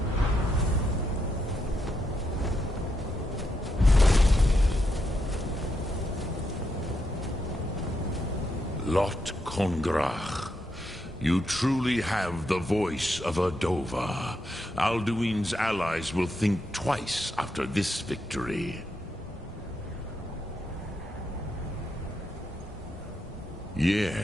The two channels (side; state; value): both; normal; correlation 0.81